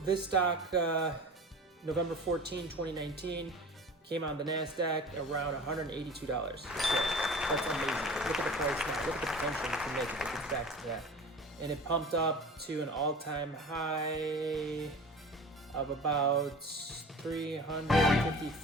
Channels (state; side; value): normal; both; correlation 0.38